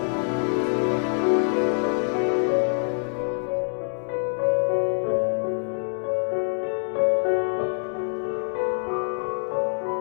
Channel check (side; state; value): right; silent; digital silence